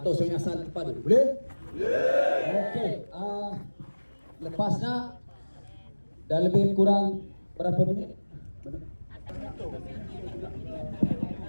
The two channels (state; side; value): inverted; both; correlation -1.00